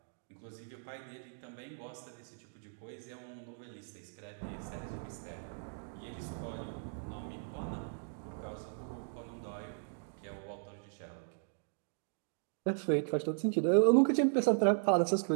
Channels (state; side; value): silent; left; digital silence